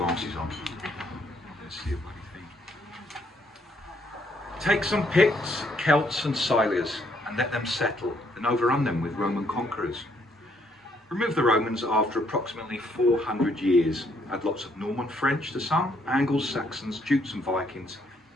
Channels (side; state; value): both; normal; correlation 0.70